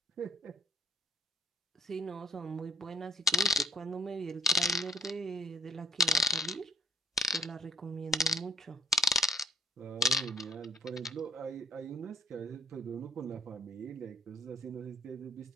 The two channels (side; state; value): both; normal; correlation 0.55